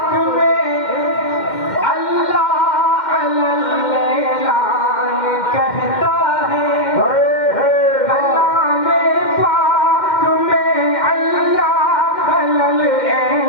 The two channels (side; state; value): right; late; 2.1 ms